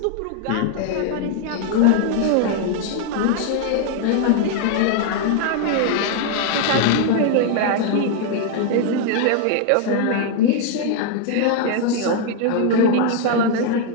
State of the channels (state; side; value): different; both; correlation 0.00